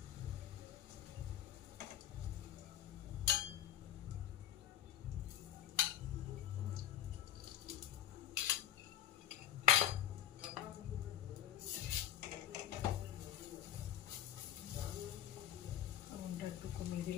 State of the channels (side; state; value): right; quieter; 11.6 dB